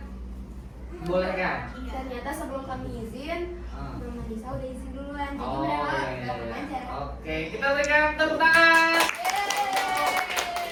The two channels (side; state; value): both; identical; correlation 1.00